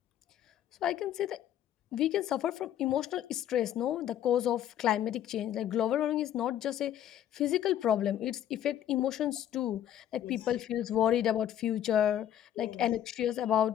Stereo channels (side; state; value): right; quieter; 11.0 dB